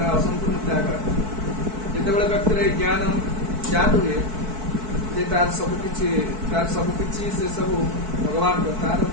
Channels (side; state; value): left; late; 4.6 ms